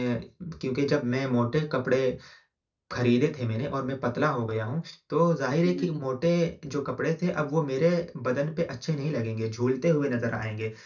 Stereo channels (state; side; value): identical; both; correlation 1.00